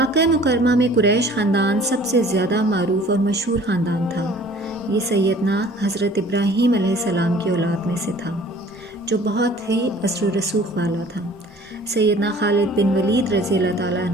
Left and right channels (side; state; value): both; normal; correlation 0.50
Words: مکرمہ میں قریش خاندان سب سے زیادہ معروف اور مشہور خاندان تھا۔ یہ سیدنا حضرت ابراہیم علیہ السلام کی اولاد میں سے تھا جو بہت ہی اثر و رسوخ والا تھا۔ سیدنا خالد بن ولید رضی اللہ تعالیٰ